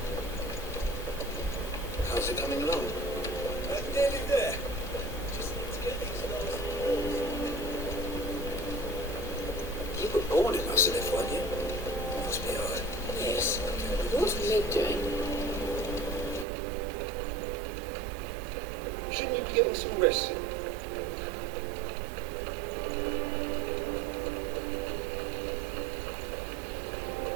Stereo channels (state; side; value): drops out; left; at 16.4 s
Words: How's it coming along? Nearly there. Just need to get these last walls. You were born in Mussolif, weren't you? Must be hard. Yes. What's Mid doing? Shouldn't you be getting some rest soon?